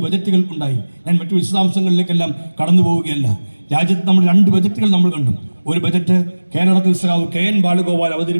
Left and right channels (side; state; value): both; inverted; correlation -1.00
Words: ബജറ്റുകൾ ഉണ്ടായി. ഞാൻ മറ്റു വിശദാംശങ്ങളിലേക്കെല്ലാം കടന്നു പോവുകയല്ല. രാജ്യത്ത് നമ്മൾ 2 ബജറ്റുകൾ നമ്മൾ കണ്ടു. ഒരു ബജറ്റ് കേരളത്തിൽ സഖാവ് KN ബാലഗോപാൽ